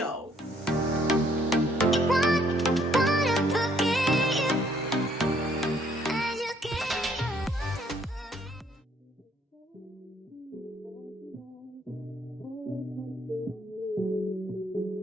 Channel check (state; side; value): normal; both; correlation 0.65